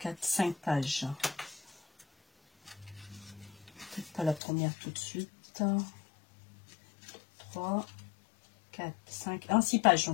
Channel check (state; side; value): drops out; right; at 4.4 s